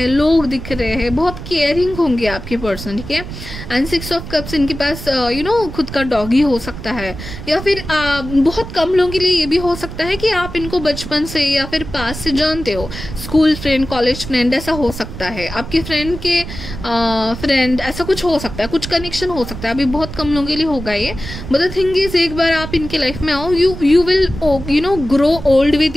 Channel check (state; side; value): noise; right; rumble, 10 dB below the sound